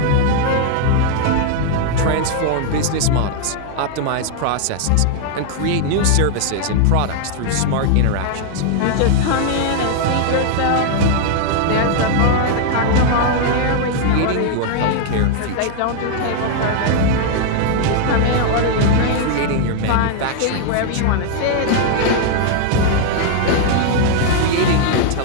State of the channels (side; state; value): both; different; correlation 0.00